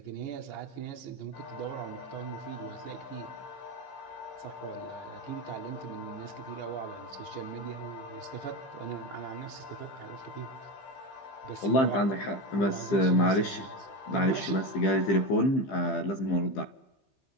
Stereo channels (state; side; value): late; right; 15 ms